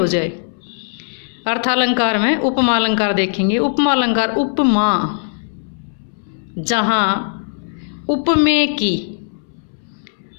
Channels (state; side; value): silent; right; 67 dB below the other